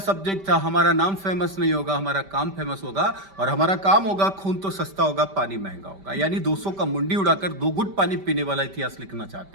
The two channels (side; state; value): left; late; 5.1 ms